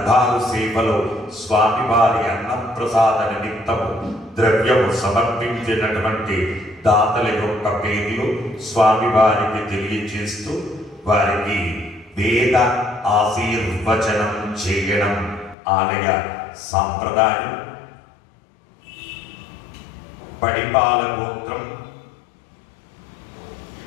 సేవలో స్వామివారి అన్నప్రసాద నిమిత్తము ద్రవ్యము సమర్పించినటువంటి దాతల యొక్క పేర్లు స్వామివారికి తెలియజేస్తూ వారికి వేద ఆశీర్వచనం చేయడం ఆలయ సాంప్రదాయం. పడిపాల గోత్రం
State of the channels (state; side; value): drops out; right; at 15.6 s